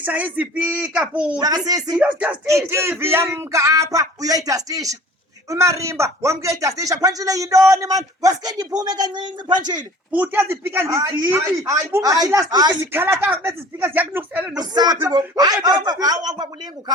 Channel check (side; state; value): both; normal; correlation 0.46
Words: izipika futhi. Mntakasisi, Ndiyozidastisha i-TV yamka apha uyoyidastisha. Umarimba wamke uyidastisha. Phanjile yintoni man? Wasike ndiphume kancinci Phanjile. futhi ezipika ndizibi. Hayi, Ubungathi hayi, last week hayi. zikhala kakubi ezi speaker ziyakunukisela Usaphi ngoku? nokutya. Ungakulinge